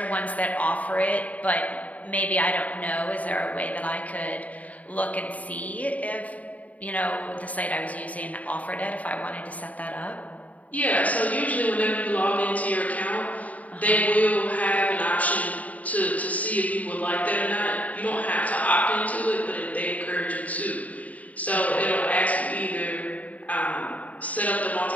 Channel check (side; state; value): right; late; 0.071 ms